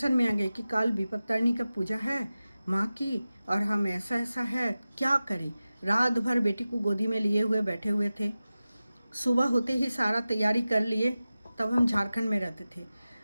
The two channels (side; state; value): both; inverted; correlation -0.95